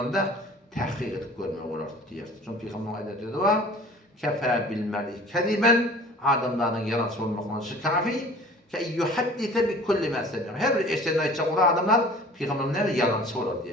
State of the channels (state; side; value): normal; both; correlation 0.45